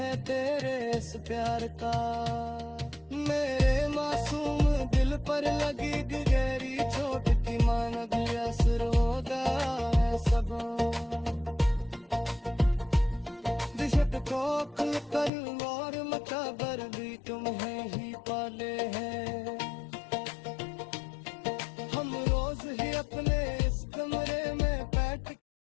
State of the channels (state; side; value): drops out; right; at 15.3 s